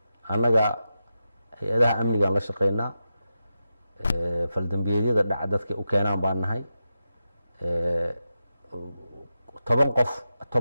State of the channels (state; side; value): inverted; both; correlation -0.90